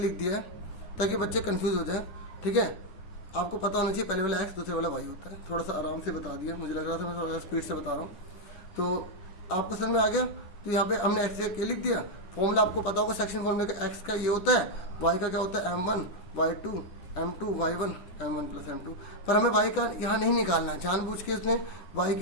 दिया है ताकि बच्चे कंफ्यूज हो जाए, ठीक है। आपको पता होना चाहिए पहले वाला x दूसरे वाला y होता है। थोड़ा सा आराम से बता दिया, मुझे लग रहा था मैं थोड़ा स्पीड से बता रहा हूँ, तो आपको समझ में आ गया। तो यहाँ पे हमने x के लिख दिया, फॉर्मूला आपको पता होगा सेक्शन फॉर्मूले का, x का ये होता है, y का क्या होता है m1 y2 m2 y1 m1 plus m2। पर हमें y का यहाँ नहीं निकालना है, जानबूझ के उसने y की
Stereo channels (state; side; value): late; right; 9.7 ms